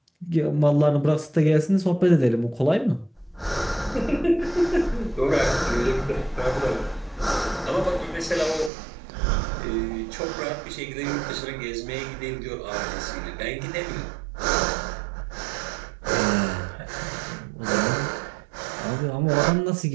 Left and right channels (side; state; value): left; drops out; at 8.7 s